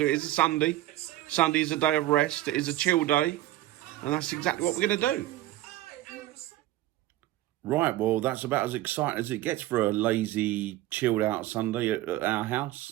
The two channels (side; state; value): left; quieter; 15.2 dB